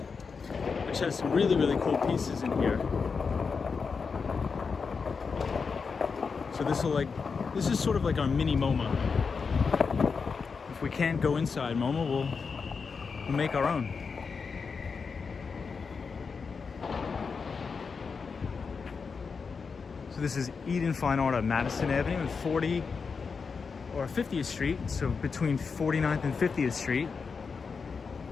which has some really, really cool pieces in here. So this is sort of like our mini MoMA. if we can't go inside, Momo, we'll make our own. So this is Eden Fine Art on Madison Avenue and 50th Street, so between 49th and 50th Street.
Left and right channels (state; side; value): quieter; right; 5.3 dB